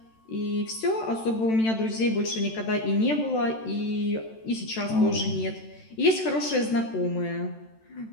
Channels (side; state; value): right; late; 13 ms